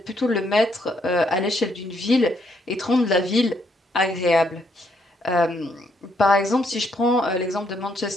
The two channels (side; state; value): both; normal; correlation 0.73